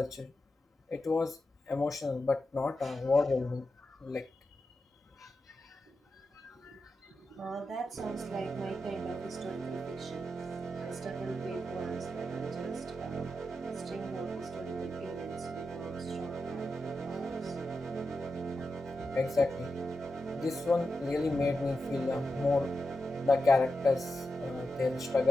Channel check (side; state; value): both; normal; correlation 0.89